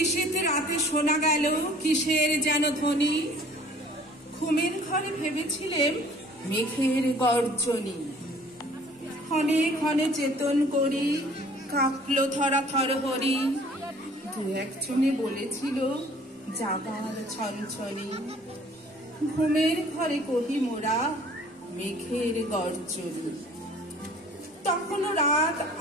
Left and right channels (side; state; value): both; normal; correlation 0.53